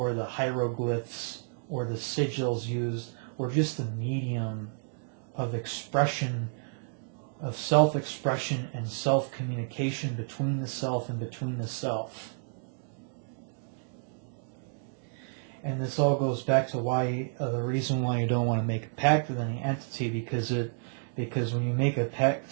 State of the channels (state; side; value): silent; left; digital silence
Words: the hieroglyphs, or the sigils used, were just the medium of expression, of self-expression and self-communication between the self and between the self. And this all goes back to why the reason why you don't want to make a pact with any entity, because when you make a